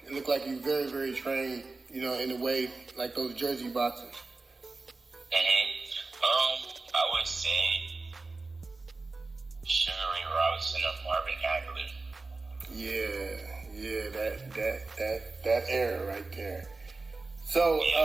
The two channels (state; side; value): quieter; left; 3.6 dB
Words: look like you very, very trained. You know, in a way like those Jersey boxers. I would say Sugar Ray Robinson or Marvin Hagler. Yeah, that era right there. So,